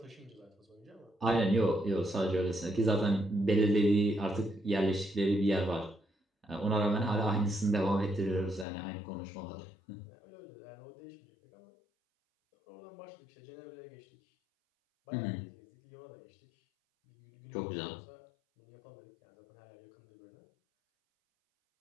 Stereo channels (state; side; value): drops out; right; at 8.7 s